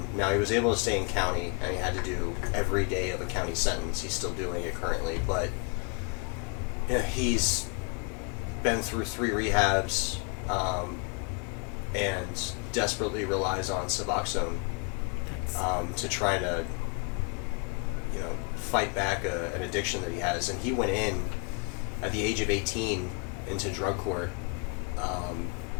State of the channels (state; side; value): quieter; right; 32.1 dB